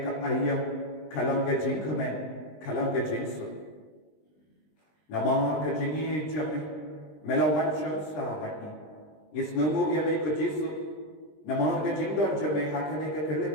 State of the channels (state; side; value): late; right; 20 ms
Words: ka ayam kalang ke Jingmane kalang ke Jesu. Namar ke Jingi jame melawat syamsa bagi. Ngis ngungu ya me ko Jesu. Namar ke Jingdon jame hakane ke